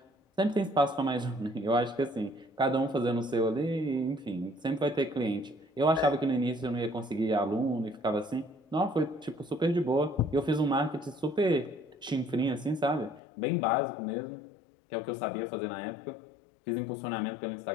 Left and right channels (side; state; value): right; drops out; at 13.2 s